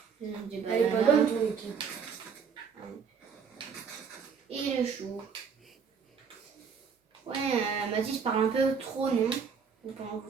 Des Elle est pas bonne ton équipe. Et le chou. Ouais, Mathis parle un peu trop, non? Vous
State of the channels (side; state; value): left; quieter; 6.3 dB